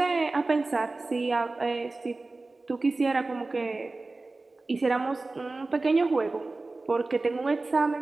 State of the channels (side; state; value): left; quieter; 3.3 dB